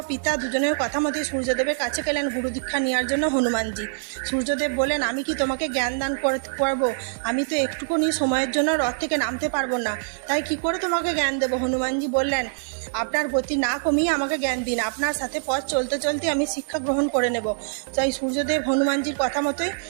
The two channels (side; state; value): left; silent; digital silence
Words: পিতা দুজনের কথা মতোই সূর্যদেবের কাছে গেলেন গুরু দীক্ষা নেওয়ার জন্য হনুমানজি। সূর্যদেব বলেন, আমি কি তোমাকে জ্ঞান দান করবো? আমি তো একটুকুনি সময়ের জন্য রথ থেকে নামতে পারবো না, তাই কি করে তোমাকে জ্ঞান দেবো? হনুমানজি বললেন, আপনার গতি না কমিয়ে আমাকে জ্ঞান দিন, আপনার সাথে পথ চলতে চলতে আমি শিক্ষা গ্রহণ করে নেব। তাই সূর্যদেব হনুমানজির কথা মতোই